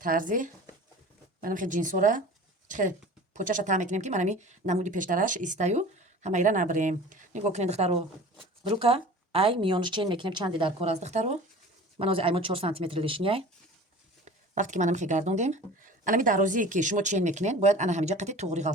тарзи. Манам хе джинсора. Чхе почаша та мекунем ки манами намуди пештараш истаю. Ҳамаира набрем. Нигоҳ кунед духтаро. Рука ай миёнаш чен мекунем чанди дар кор аст духтаро. Ман ози аймо 4 см лишняй. Вақте ки манам хе гардондем. Анами дарозие ки шумо чен мекунед, бояд ана ҳамиҷа қати туғри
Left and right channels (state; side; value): normal; both; correlation 0.41